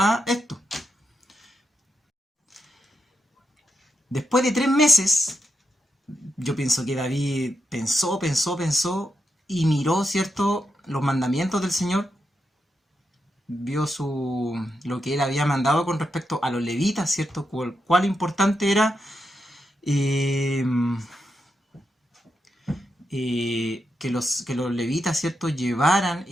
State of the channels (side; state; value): both; normal; correlation 0.86